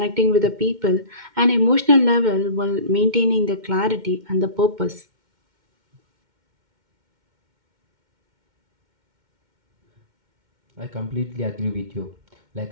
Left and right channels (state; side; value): late; left; 2.1 ms